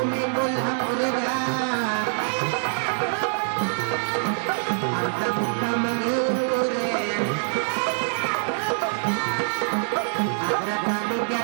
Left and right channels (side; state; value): left; silent; digital silence